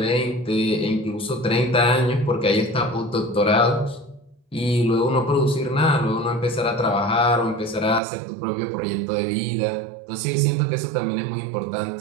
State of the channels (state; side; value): drops out; left; at 8.0 s